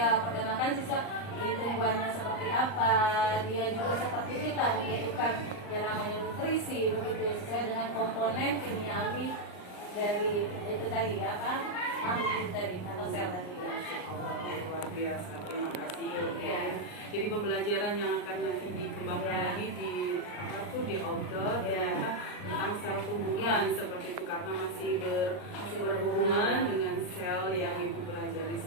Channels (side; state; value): right; late; 39 ms